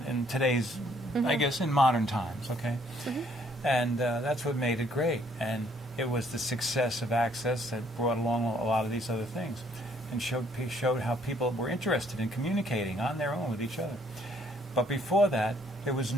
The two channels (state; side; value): normal; both; correlation 0.65